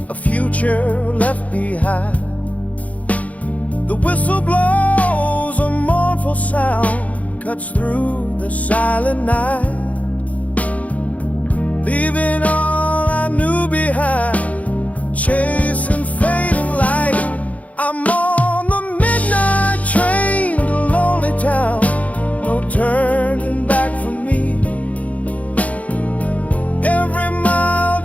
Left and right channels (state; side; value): late; right; 0.069 ms